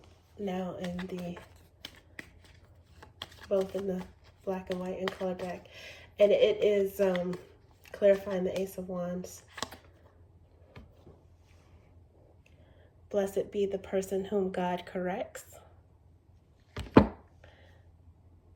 Now in both in the black and white and color deck. And it is clarifying the Ace of Wands. Blessed be the person whom God corrects.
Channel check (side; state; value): both; identical; correlation 1.00